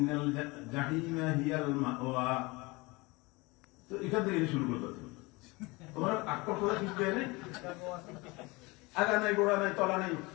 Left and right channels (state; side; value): quieter; right; 24.5 dB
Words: জাহিমা হিয়াল মাওয়া। তো এখান থেকে শুরু করতে তোমার আক্কর করে কিছু দেয় নাই, আগা নাই গোড়া নাই তলা নাই,